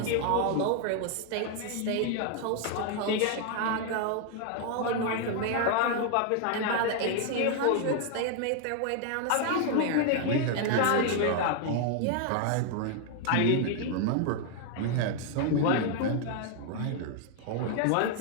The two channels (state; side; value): different; both; correlation 0.00